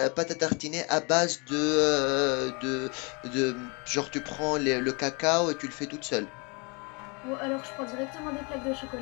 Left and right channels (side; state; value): right; quieter; 31.2 dB